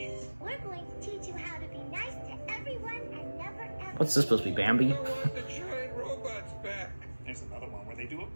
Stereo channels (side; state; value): both; inverted; correlation -1.00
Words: We're going to teach you how to be nice to everyone and never ever... What's this supposed to be, Bambi? I want the giant robots back. There's another one where they do a